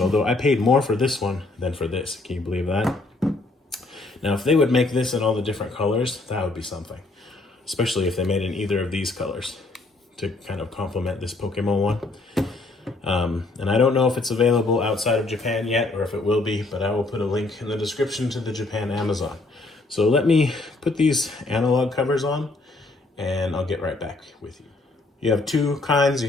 I paid more for this one than for this. Can you believe that? Now, if they would make this in all the different colors, that would be something. Especially if they made in either of these colors to kind of complement this Pokemon one. And I don't know if it's available outside of Japan yet, or if it will be, but I will put a link in the description to the Japan Amazon. So let me put these analog covers on, and I'll get right back with you. You have 2 kinds. You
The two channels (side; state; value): right; quieter; 3.2 dB